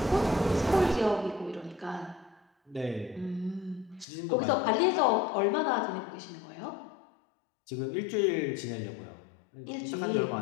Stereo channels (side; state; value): right; drops out; at 4.0 s